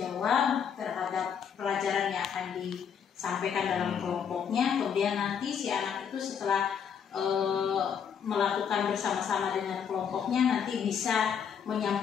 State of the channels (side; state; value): right; quieter; 7.5 dB